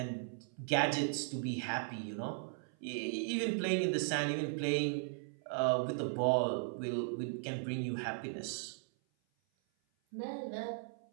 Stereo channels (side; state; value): left; silent; 53 dB below the other